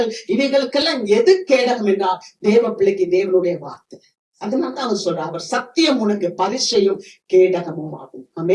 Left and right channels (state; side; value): identical; both; correlation 1.00